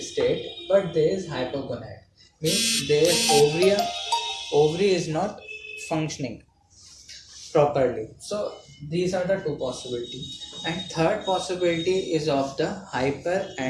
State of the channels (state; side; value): identical; both; correlation 1.00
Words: but there is hypogonad. Means there is ovary is not functioning properly. So these are the two possibilities. And third possibility is of the